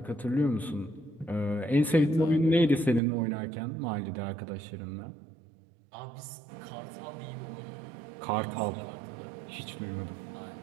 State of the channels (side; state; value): left; drops out; at 3.0 s